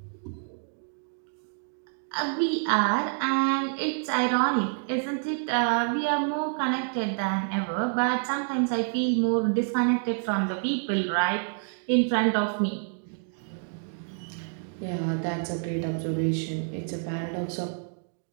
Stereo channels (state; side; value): silent; left; 59 dB below the other